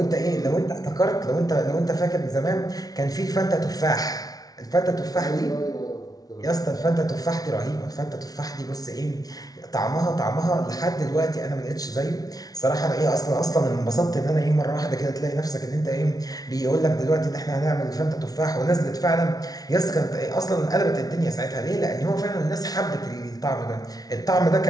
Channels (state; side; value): late; right; 0.18 ms